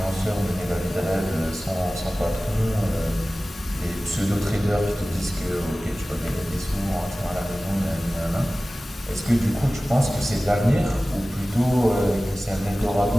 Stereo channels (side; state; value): both; normal; correlation 0.97